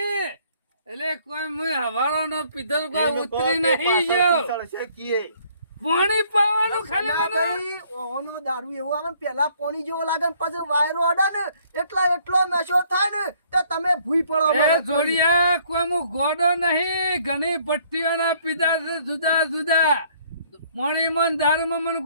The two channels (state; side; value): inverted; both; correlation -0.62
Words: એટલે કોઈ મુય હવારો નો પીધો કોઈ ઉતરી નહીં ગયો સળસે કીએ. પાણી પાવાનું ખાલી મને સનાભાઈ, ઓનો દારૂ એવો આવે ને પેલા પોણી જેવો લાગે ને પછી વાયરો અડે ને એટલો નશો થાય ને તો તમે ભૂઈ પડો એ મને. જોડિયા કોઈ હું ગોડો નહીં ઘણી ભટ્ટીઓના પીધા છે જુદા જુદા પાણીમાં ને દારૂમાં મને